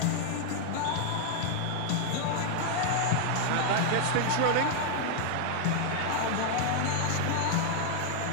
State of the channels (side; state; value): both; different; correlation 0.00